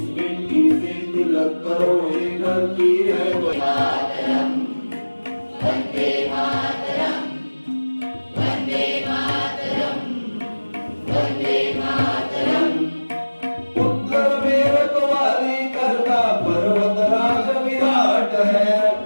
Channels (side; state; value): both; inverted; correlation -1.00